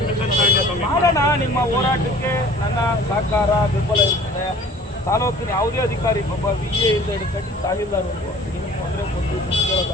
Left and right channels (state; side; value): normal; both; correlation 0.48